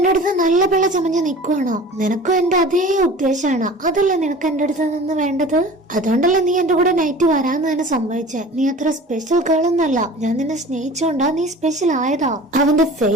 അടുത്ത് നല്ല പിള്ള ചമഞ്ഞ് നിൽക്കുവാണോ? നിനക്കും എന്റെ അതേ ഉദ്ദേശമാണ്. അതല്ലേ നിനക്ക് എന്റെ അടുത്ത് നിന്ന് വേണ്ടത്? അതുകൊണ്ടല്ലേ നീ എന്റെ കൂടെ നൈറ്റ് വരാന്ന് തന്നെ സമ്മതിച്ചേ. നീ അത്ര സ്പെഷ്യൽ ഗേൾ ഒന്നല്ല. ഞാൻ നിന്നെ സ്നേഹിച്ചോണ്ടാ നീ സ്പെഷ്യൽ ആയതാ. അവന്റെ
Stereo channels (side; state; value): both; normal; correlation 0.41